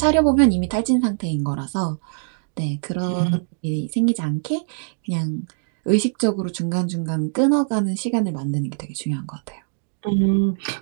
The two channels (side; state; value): left; silent; digital silence